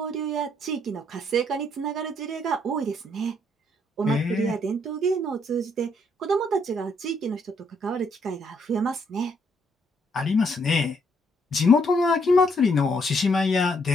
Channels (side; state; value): both; normal; correlation 0.71